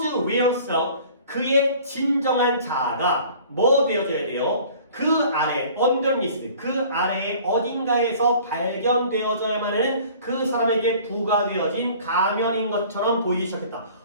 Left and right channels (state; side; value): inverted; both; correlation -0.49